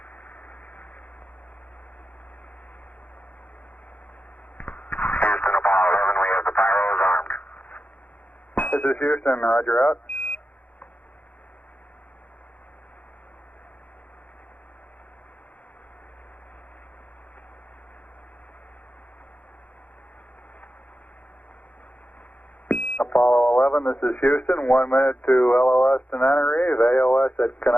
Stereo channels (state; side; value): late; right; 0.075 ms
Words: Houston, Apollo 11, we have the pyros armed. This is Houston, roger out. Apollo 11, this is Houston, 1 minute to LOS Tenerife, AOS at